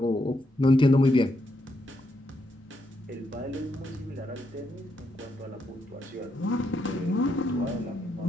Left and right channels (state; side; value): normal; both; correlation 0.79